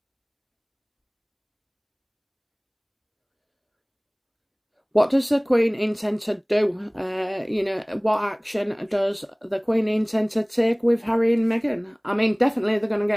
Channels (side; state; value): both; identical; correlation 1.00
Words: What does the Queen intend to do? You know, what action does the Queen intend to take with Harry and Meghan? I mean, definitely they're going to